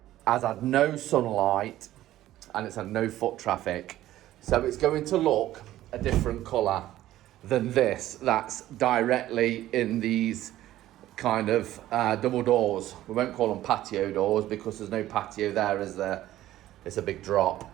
has had no sunlight and it's had no foot traffic, so it's going to look a different colour. than this that's directly in these kind of double doors. We won't call them patio doors because there's no patio there, is there? It's a big drop.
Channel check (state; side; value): quieter; left; 14.2 dB